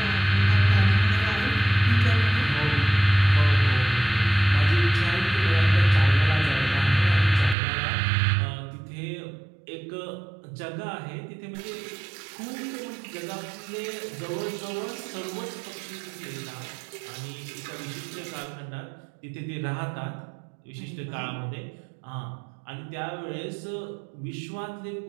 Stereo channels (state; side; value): drops out; left; at 7.6 s